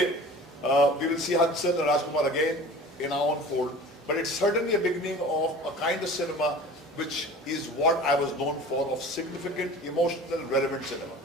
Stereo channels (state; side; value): normal; both; correlation 0.41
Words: we will see Hansal and Rajkumar again in our own fold. But it's certainly a beginning of a kind of cinema which is what I was known for, of significant, emotional, relevant cinema.